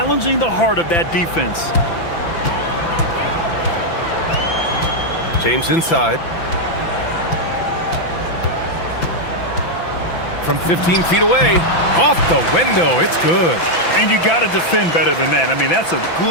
the heart of that defense. James inside. From 15 feet away. Off the window. It's good. And you got to defend better than that. I mean, that's a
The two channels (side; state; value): right; late; 5.9 ms